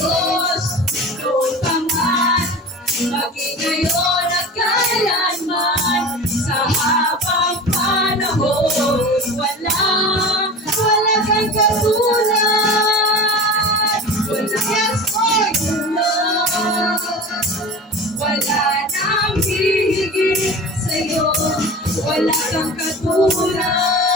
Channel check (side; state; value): both; normal; correlation 0.34